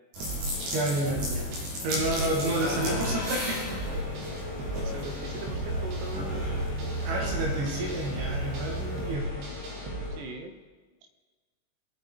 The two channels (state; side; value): late; left; 21 ms